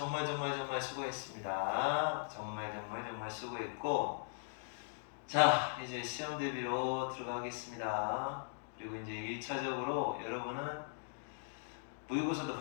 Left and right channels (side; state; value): right; silent; digital silence